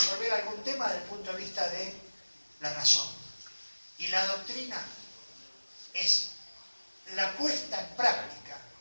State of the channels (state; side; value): inverted; both; correlation -1.00